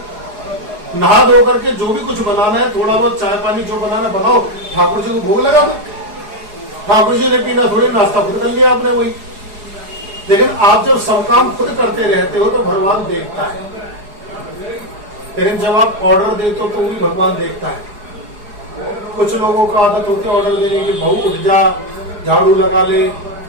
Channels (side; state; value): left; late; 4.8 ms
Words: नहा धो करके जो भी कुछ बनाना है, थोड़ा बहुत चाय पानी जो बनाना बनाओ, ठाकुर जी को भोग लगा दो। ठाकुर जी ने पीना थोड़ी, नाश्ता खुद कर लिया आपने वही। लेकिन आप जब सब काम खुद करते रहते हो तो भगवान देखता है, लेकिन जब आप ऑर्डर देते हो तो भी भगवान देखता है। कुछ लोगों का आदत होती है ऑर्डर देने की, बहू उठ जा झाड़ू लगा ले,